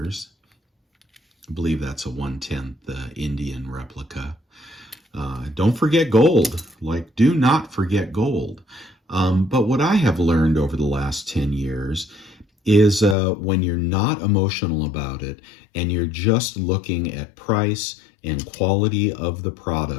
I believe that's a 1/10 Indian replica. Don't forget gold. Do not forget gold. But what I have learned over the last 10 years is when you're not emotional about it and you're just looking at price and quality of the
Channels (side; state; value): right; drops out; at 13.2 s